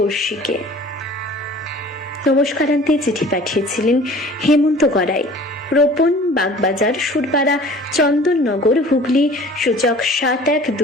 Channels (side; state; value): both; normal; correlation 0.46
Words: নমস্কারান্তে চিঠি পাঠিয়েছিলেন হেমন্ত গড়াই, রোপণ, বাগবাজার, সুরপাড়া, চন্দননগর, হুগলি, সূচক